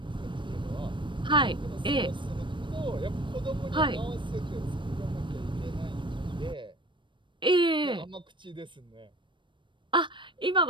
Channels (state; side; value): late; left; 0.23 ms